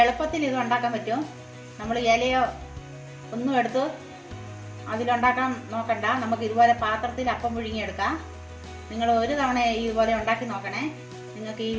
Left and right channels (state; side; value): identical; both; correlation 1.00